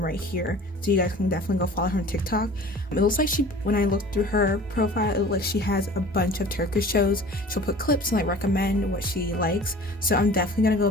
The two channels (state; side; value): normal; both; correlation 0.43